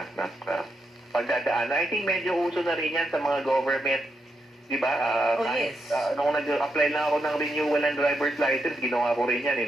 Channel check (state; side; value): normal; both; correlation 0.83